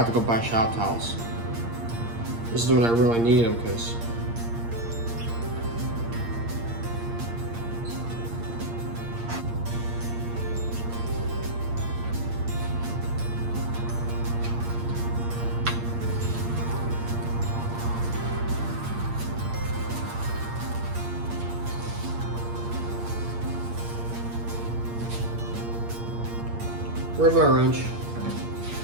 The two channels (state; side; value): late; left; 8.6 ms